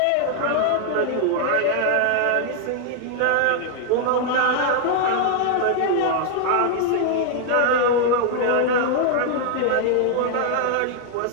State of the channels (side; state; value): both; different; correlation 0.00